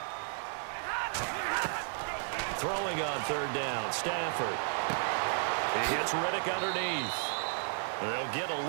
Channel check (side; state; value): left; silent; digital silence